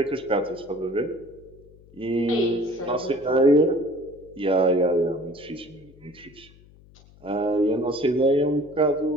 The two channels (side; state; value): left; noise; hum, 25 dB below the sound